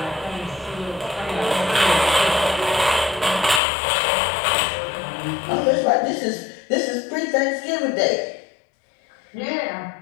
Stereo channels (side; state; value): right; drops out; at 3.6 s